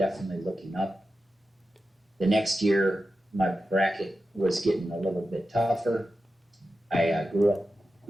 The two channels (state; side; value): normal; both; correlation 0.91